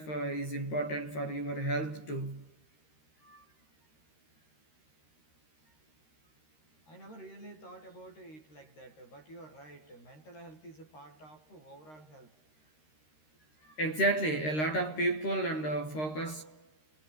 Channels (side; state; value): right; late; 13 ms